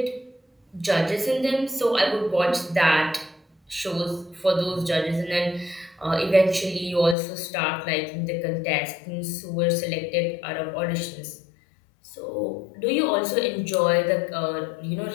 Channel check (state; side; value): drops out; right; at 7.2 s